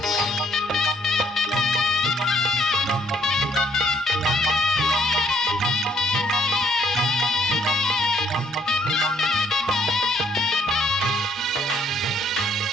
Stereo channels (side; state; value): both; normal; correlation 0.67